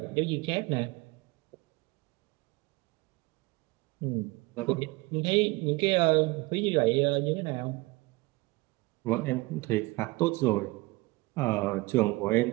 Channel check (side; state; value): left; quieter; 22.9 dB